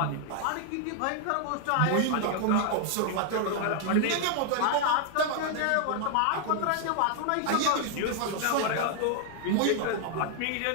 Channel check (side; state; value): both; different; correlation 0.00